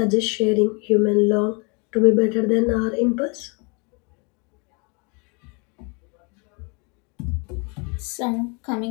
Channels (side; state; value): right; quieter; 33.1 dB